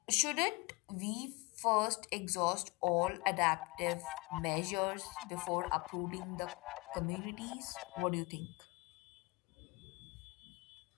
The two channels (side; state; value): right; quieter; 26.6 dB